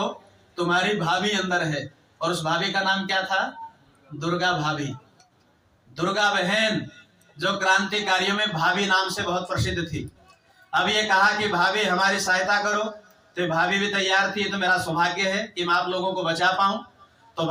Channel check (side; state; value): both; identical; correlation 1.00